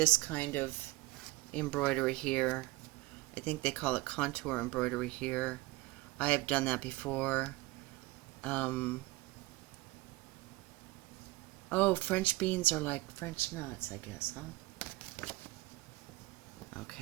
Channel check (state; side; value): quieter; left; 20.1 dB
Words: kind of embroidery here. I think they call it contour embroidery here. I have done that before. Oh, French beans are like French nuts, I guess, huh?